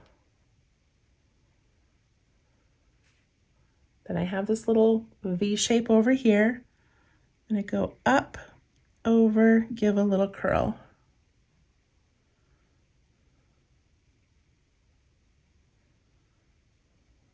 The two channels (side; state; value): both; identical; correlation 1.00